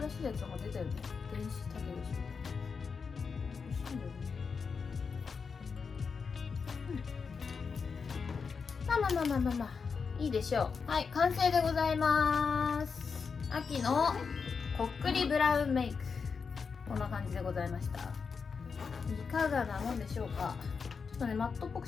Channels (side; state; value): right; quieter; 5.5 dB